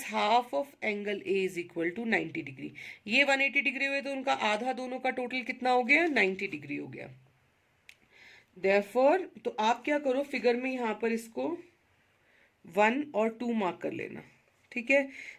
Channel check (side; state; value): both; identical; correlation 1.00